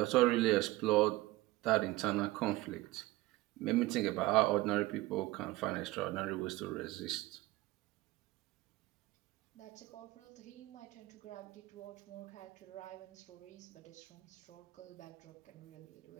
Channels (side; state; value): left; quieter; 19.2 dB